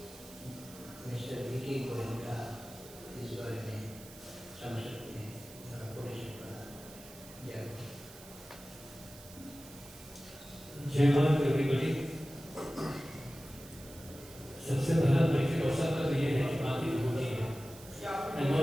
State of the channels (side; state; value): right; noise; hiss, 18 dB below the sound